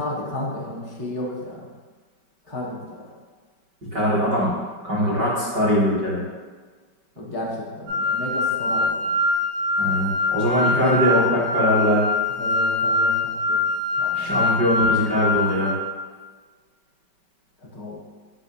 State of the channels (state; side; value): late; left; 5.2 ms